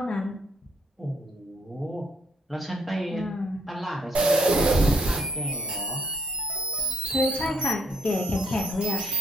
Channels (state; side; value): normal; both; correlation 0.69